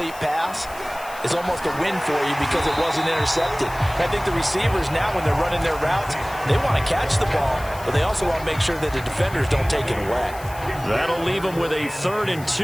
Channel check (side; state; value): left; noise; hiss, 18 dB below the sound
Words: pass is almost a win for you because it wasn't intercepted. I think the receivers now, when they're running their routes, they want to catch the ball, but they also want to make sure that the defenders don't take it away. That'll leave them with a 3rd and